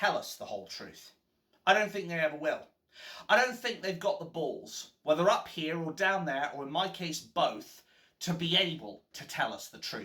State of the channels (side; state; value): both; identical; correlation 1.00